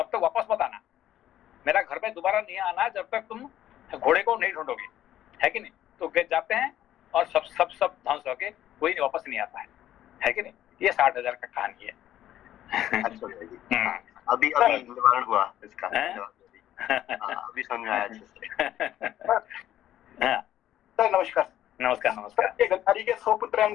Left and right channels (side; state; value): right; quieter; 12.3 dB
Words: तक वापस मत आना, मेरा घर में दोबारा नहीं आना जब तक तुम घोड़े को नहीं ढूंढोगे, है कि नहीं। तो वे जाते हैं और सब ध्वंस होके कोई नहीं वापस नहीं आता है कि नहीं। ये 60,000 का कहानी है। अच्छा भैया जी, अभी निवारण हुआ इसका, अभी समझ आया अच्छे से। सर नमस्कार। नमस्कार नमस्कार। गांधारी के 100 पुत्र हैं,